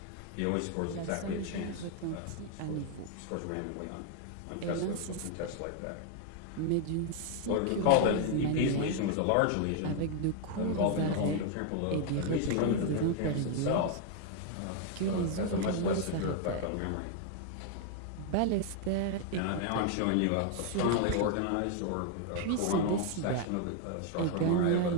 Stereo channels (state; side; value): different; both; correlation 0.00